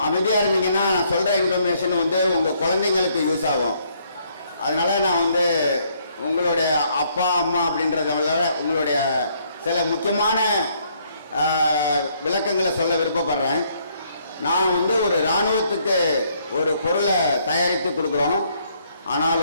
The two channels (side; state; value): both; inverted; correlation -0.68